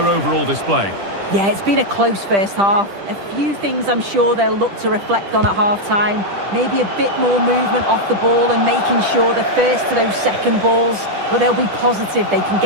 overall display? Yeah, it's been a close first half. A few things I'm sure they'll look to reflect on at half-time. Maybe a bit more movement off the ball and making sure they're first to those second balls. But they'll be positive they can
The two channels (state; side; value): late; left; 10 ms